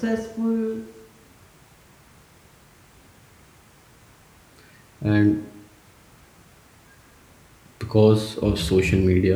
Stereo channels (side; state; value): both; identical; correlation 1.00